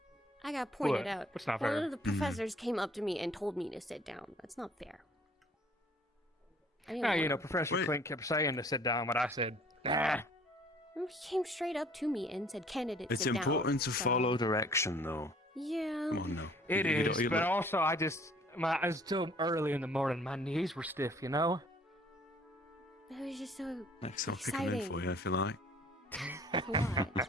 I got pointed What? out. What's not One fair? of the professors came up to me and told me to sit down. That's not fair. I didn't Yeah, you wanna- know, Professor Clint kept saying to sit down, but I said, nah. He came straight up to me and said, candidate, It's sit down. important to So- follow direction, though. Yeah. Come on now. It You is, don't- you but look- also it's still early in the morning. My knees were stiff, you know? It was just so Next, I'll pick them in exciting. for you if you like. What?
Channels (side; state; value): both; normal; correlation 0.56